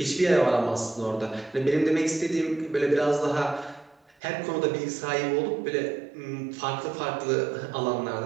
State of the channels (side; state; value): left; drops out; at 4.2 s